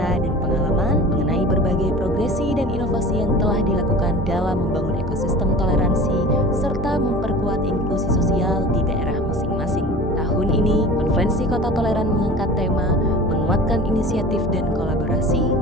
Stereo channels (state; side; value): normal; both; correlation 0.39